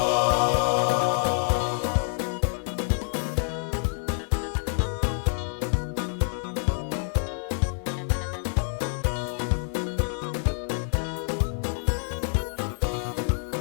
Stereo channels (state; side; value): silent; right; digital silence